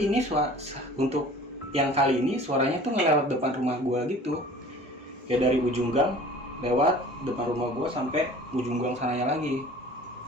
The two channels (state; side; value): normal; both; correlation 0.45